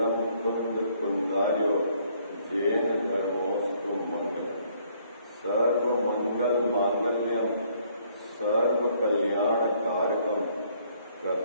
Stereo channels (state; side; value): inverted; both; correlation -0.65